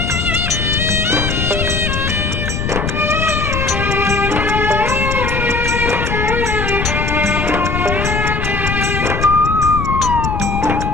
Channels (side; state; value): left; noise; rumble, 2 dB below the sound